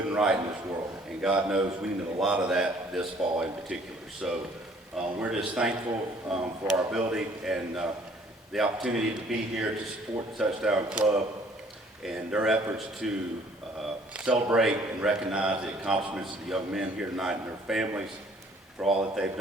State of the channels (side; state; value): both; normal; correlation 0.58